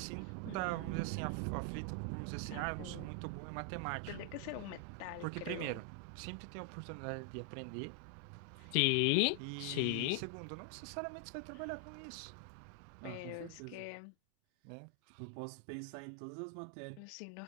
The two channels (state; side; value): different; both; correlation 0.00